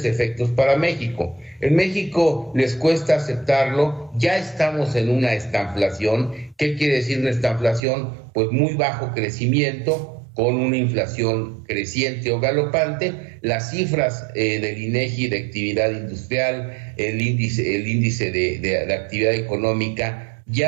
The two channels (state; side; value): drops out; left; at 7.8 s